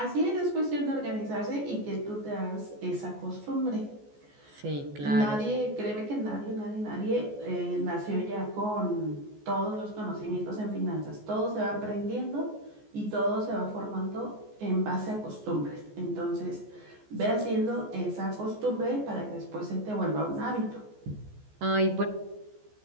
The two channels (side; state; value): left; late; 14 ms